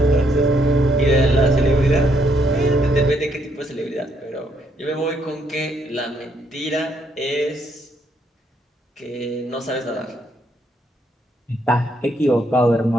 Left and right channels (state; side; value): normal; both; correlation 0.73